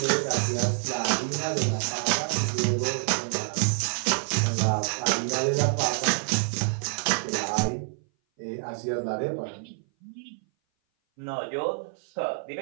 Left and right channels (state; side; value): silent; left; 57 dB below the other